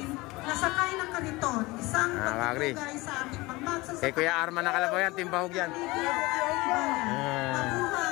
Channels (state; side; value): quieter; right; 21.9 dB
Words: nasakay ng kariton, isang pagpapagay sa ating pagmagsasakay. Kay Kuya Arman na kalabaw yan, timbahog yan.